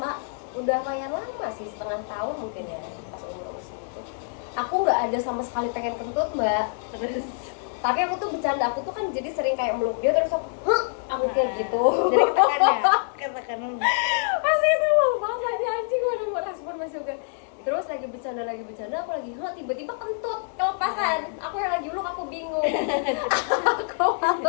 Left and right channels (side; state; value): right; silent; 61 dB below the other